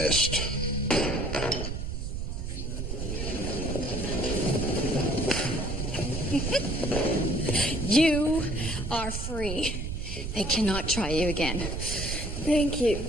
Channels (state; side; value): noise; right; rumble, 4 dB below the sound